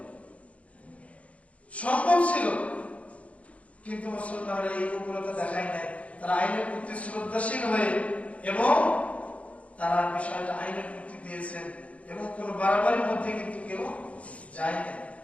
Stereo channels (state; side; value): late; right; 0.065 ms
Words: সম্ভব ছিল, কিন্তু মুসলমানরা এই উগ্রতা দেখায় নাই। তারা আইনের প্রতি শ্রদ্ধাশীল হয়ে এবং তারা বিষয়টা আইনের প্রতি দিয়েছেন এবং কোন বাড়াবাড়ির মধ্যে কিন্তু কেউ যায় না,